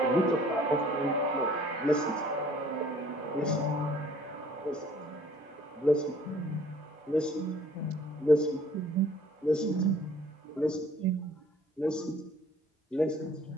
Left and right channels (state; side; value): normal; both; correlation 0.56